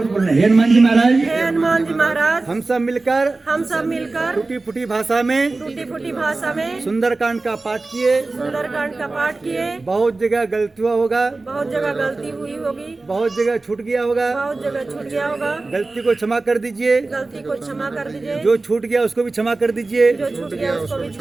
से बोलना, हे हनुमान जी महाराज, हम सब मिलकर टूटी फूटी भाषा में सुंदरकांड का पाठ किए। बहुत जगह गलतियाँ होगा, बहुत जगह गलती हुई होगी, बहुत जगह छूट गया होगा, गलती को क्षमा कर दीजिए, जो छूट गया उसको भी क्षमा कर दीजिए।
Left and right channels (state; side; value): quieter; left; 3.4 dB